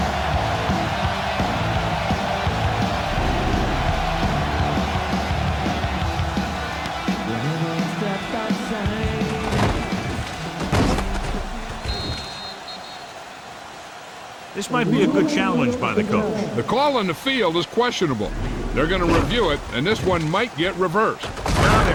This might be a good challenge by the coach. The call on the field is questionable. They're going to review it, and this one might get reversed. Now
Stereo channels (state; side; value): identical; both; correlation 1.00